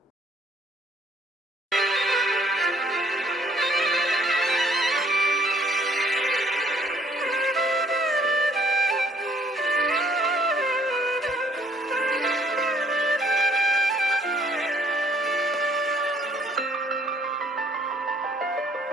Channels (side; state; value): both; normal; correlation 0.62